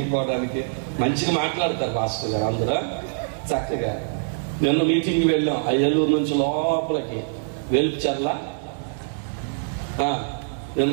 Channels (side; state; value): left; silent; digital silence